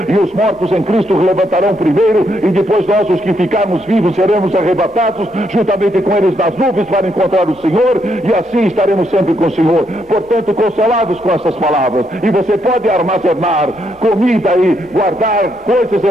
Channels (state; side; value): normal; both; correlation 0.76